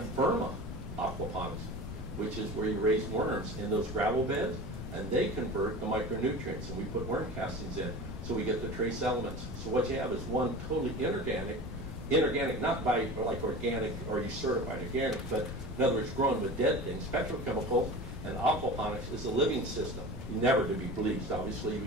verma aquaponics, which is where you raise worms in those gravel beds, and they convert the micronutrients, and we put worm castings in. So we get the trace elements. So what you have is one totally inorganic not by like organic or you certified organic, but in other words, grown with dead things, petrochemicals, and aquaponics is a living system. Never to be bleached, obviously you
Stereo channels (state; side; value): noise; left; rumble, 7 dB below the sound